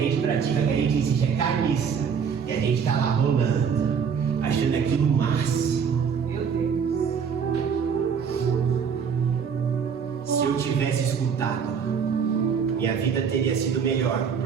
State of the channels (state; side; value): quieter; left; 6.7 dB